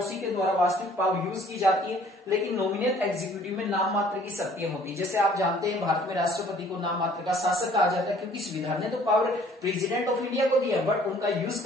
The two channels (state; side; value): normal; both; correlation 0.56